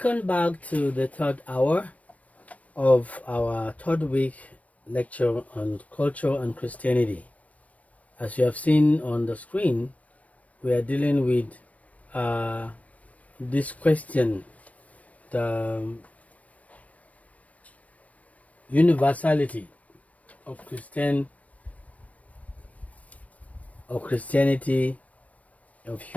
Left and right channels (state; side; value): late; right; 0.067 ms